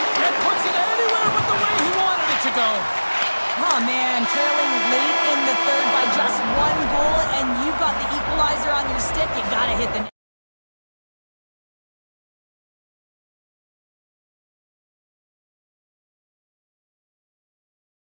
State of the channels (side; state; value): both; inverted; correlation -1.00